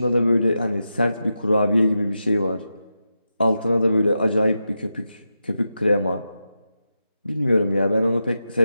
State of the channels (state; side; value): inverted; both; correlation -0.89